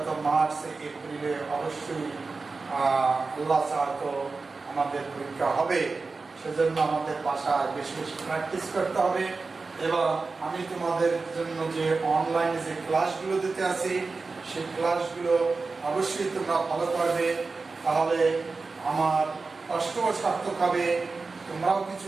মার্চ এপ্রিলে অবশ্যই আল্লাহ চাহতো আমাদের পরীক্ষা হবে। সেজন্য আমাদের বাসায় বেশি বেশি প্র্যাকটিস করতে হবে। এবং আমি তোমাদের জন্য যে অনলাইনে যে ক্লাসগুলো দিতে আছি, সেই ক্লাসগুলো অবশ্যই তোমরা ফলো করবে, তাহলে আমার কষ্টও সার্থক হবে, তোমরাও কিছু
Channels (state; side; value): quieter; left; 4.0 dB